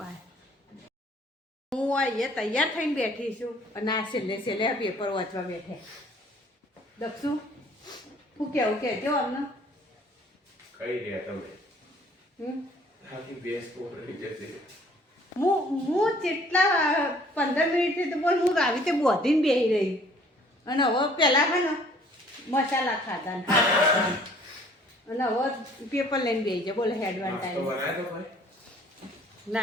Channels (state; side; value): normal; both; correlation 0.56